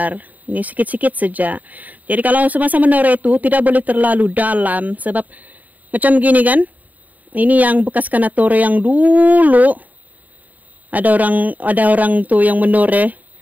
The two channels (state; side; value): late; left; 0.078 ms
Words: Ini sikit-sikit saja. Jadi kalau semasa menore itu tidak boleh terlalu dalam. Sebab macam gini kan, ini yang bekas kanatore yang dulu. Ada orang tuh yang menore.